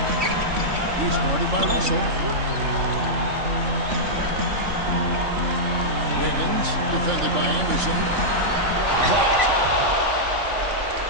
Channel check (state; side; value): late; left; 3.5 ms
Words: He's guarded by Russell. Wiggins, defended by Anderson. Blocked.